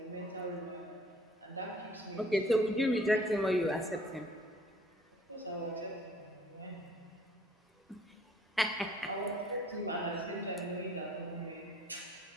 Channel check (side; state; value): both; normal; correlation 0.56